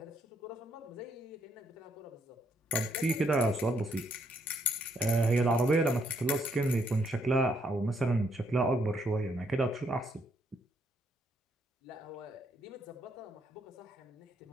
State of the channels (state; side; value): normal; both; correlation 0.73